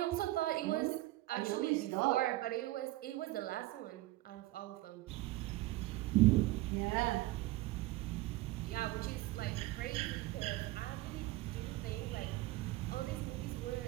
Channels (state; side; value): quieter; left; 17.9 dB